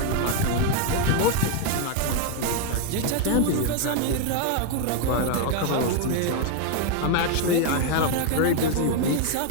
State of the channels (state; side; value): different; both; correlation 0.01